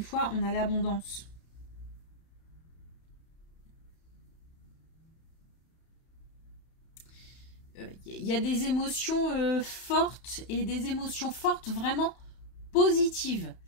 on a l'abondance. Il y a des émotions fortes et des émotions fortes vraiment positives.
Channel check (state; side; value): late; right; 31 ms